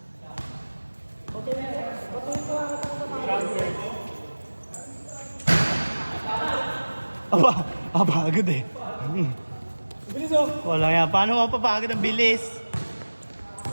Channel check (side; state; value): both; inverted; correlation -1.00